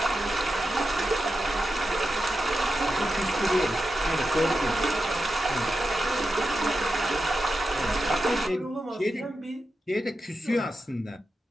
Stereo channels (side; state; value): both; normal; correlation 0.90